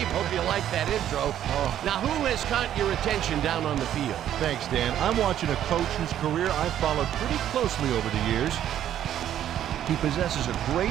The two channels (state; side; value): quieter; left; 11.0 dB